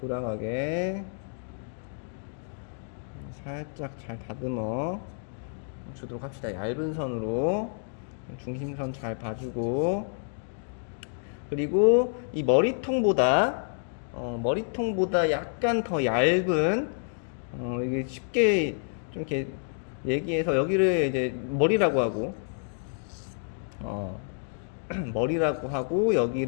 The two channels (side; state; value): right; silent; digital silence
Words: 살짝 잘 다듬어 주도록 합시다. 얇은 선으로 중심선 잘 봐주고, 그리고 이 머리통보다 약간 더 얇은, 이게 쉽게 좀 이렇게 얘기해서 여기를 이제 머리라고 하고, 머리라고 하고